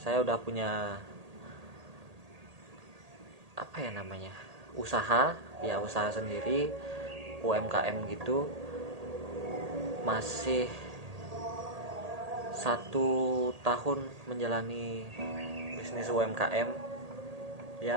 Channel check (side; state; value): left; late; 1.8 ms